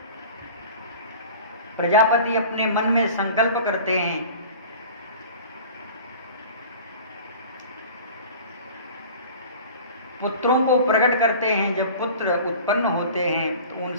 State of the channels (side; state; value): both; inverted; correlation -0.41